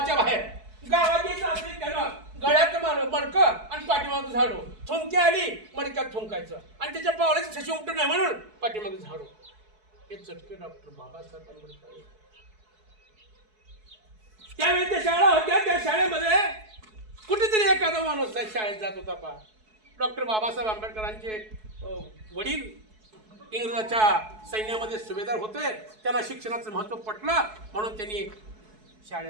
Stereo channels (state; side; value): late; left; 4.6 ms